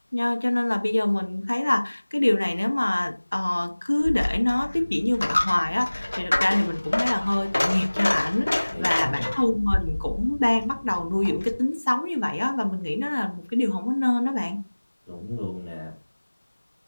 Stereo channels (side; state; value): both; inverted; correlation -1.00